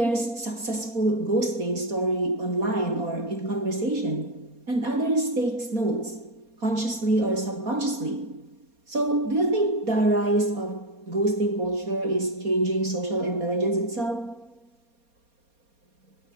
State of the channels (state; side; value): late; left; 4.2 ms